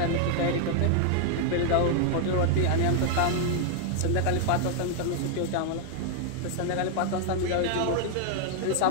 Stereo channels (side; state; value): both; different; correlation 0.00